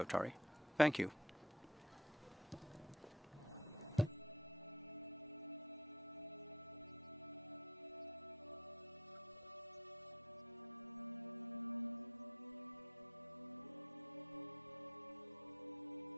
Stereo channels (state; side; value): normal; both; correlation 0.55